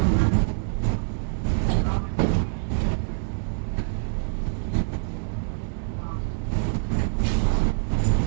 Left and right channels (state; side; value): silent; left; 62 dB below the other